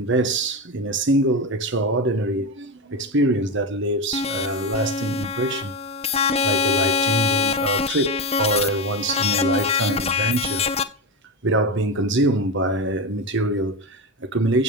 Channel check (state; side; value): normal; both; correlation 0.17